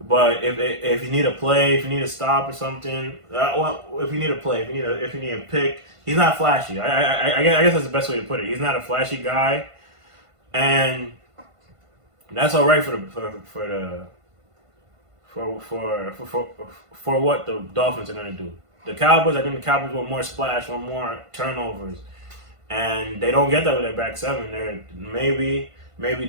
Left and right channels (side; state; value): left; late; 1.5 ms